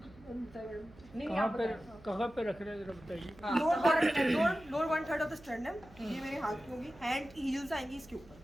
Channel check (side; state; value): right; noise; hum, 23 dB below the sound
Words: नहीं कहाँ आप पे बताएं। कहाँ पे रख रहे हैं जरा बताइए। हाँ, लोअर 1/3 ऑफ द स्टर्नम, ये मेरे हाथ की होगी, हैंड हील्स आएंगी इसके